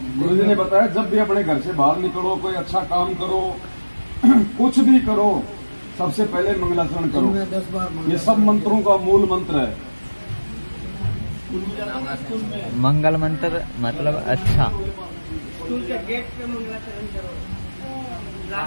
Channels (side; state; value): both; inverted; correlation -1.00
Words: गुरु जी ने बताया जब भी अपने घर से बाहर निकलो, कोई अच्छा काम करो, कुछ भी करो, सबसे पहले मंगलाचरण करो। ये सब मंत्रों का मूल मंत्र है। मंगल मंत्र मतलब अच्छा। स्कूल के गेट पे मंगलाचरण करो,